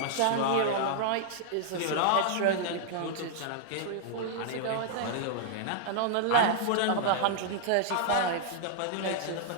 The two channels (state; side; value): different; both; correlation -0.01